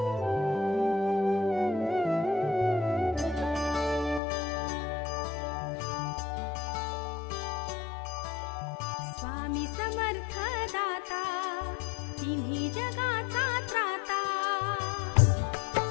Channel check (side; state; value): right; drops out; at 4.2 s